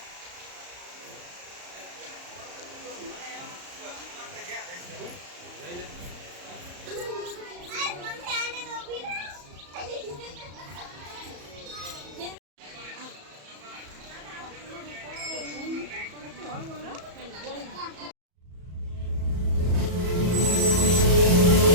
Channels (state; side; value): late; left; 34 ms